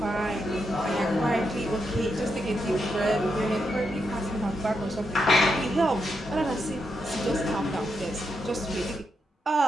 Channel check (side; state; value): both; normal; correlation 0.83